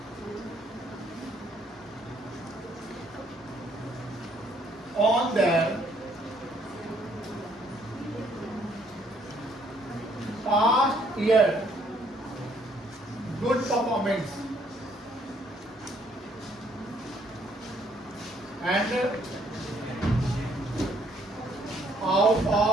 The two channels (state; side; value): normal; both; correlation 0.66